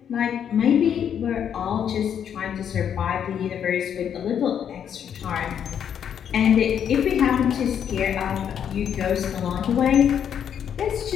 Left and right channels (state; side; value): quieter; right; 8.6 dB